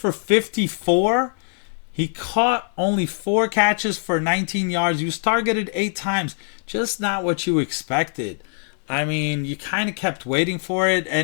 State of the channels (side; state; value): right; silent; digital silence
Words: 54. He caught only 4 catches for 19 yards. He was targeted 8 times. Just not what you expected. I mean, you kind of kept waiting for it.